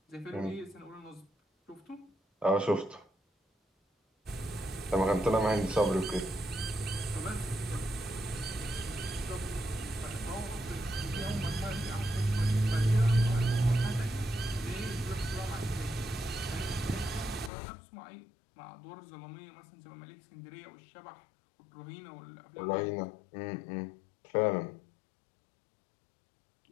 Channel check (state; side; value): drops out; right; at 17.5 s